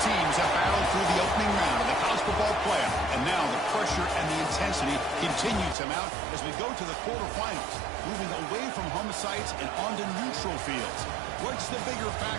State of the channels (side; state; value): left; drops out; at 5.8 s